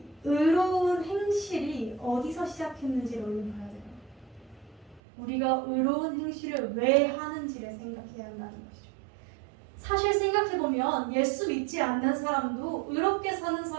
의로운 행실이 어디서 시작했는지를 우리는 봐야 돼요. 우리가 의로운 행실을 왜 하는지를 생각해야 한다는 것이죠. 사실 생각해보면 예수 믿지 않는 사람도 의롭게 사는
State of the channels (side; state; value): left; drops out; at 5.0 s